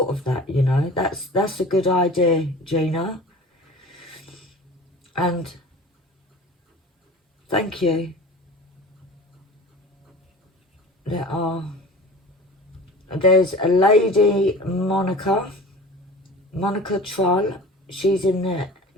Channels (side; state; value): both; normal; correlation 0.39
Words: of that, you know. That's a good idea, Gina. And thank you. There's a lady, Monica Troll. She's in the